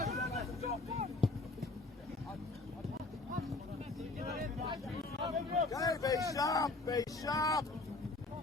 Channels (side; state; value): right; quieter; 3.2 dB